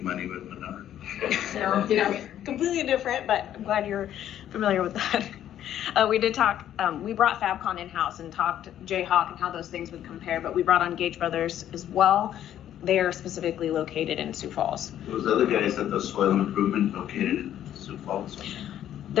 Money with Menard? No, completely different, but I'm glad you're familiar with that. We did talk, we brought Fabcon in-house and talked Jayhawk and how those things would compare, but we brought on Gage Brothers as well. They are specifically located in Sioux Falls. Those other guys at the soil improvement located in Sioux Falls?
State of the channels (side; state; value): right; quieter; 11.1 dB